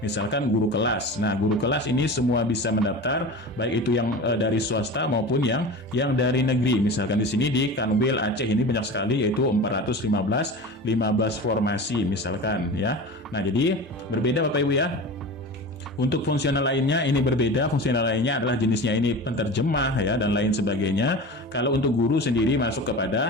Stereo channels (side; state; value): both; normal; correlation 0.32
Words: misalkan guru kelas. Nah, guru kelas ini semua bisa mendaftar, baik itu yang dari swasta maupun yang dari negeri. Misalkan di sini di Kanwil Aceh ini banyak sekali, yaitu 415 formasi misalkan ya. Nah, jadi berbeda Bapak Ibu ya. Untuk fungsional lainnya ini berbeda, fungsional lainnya adalah jenisnya ini penterjemah ya dan lain sebagainya. Kalau untuk guru sendiri masuk